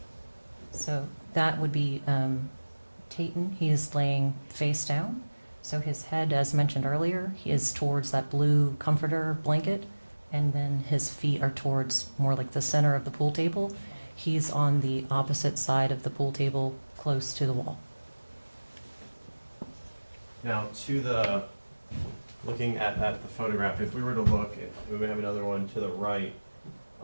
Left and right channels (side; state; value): both; inverted; correlation -1.00